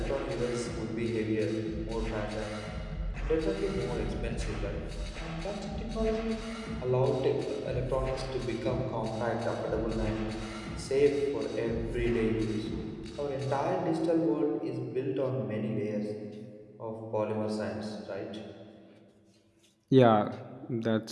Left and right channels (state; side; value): identical; both; correlation 1.00